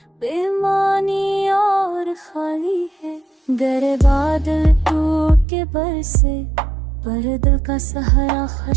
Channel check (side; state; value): left; drops out; at 5.5 s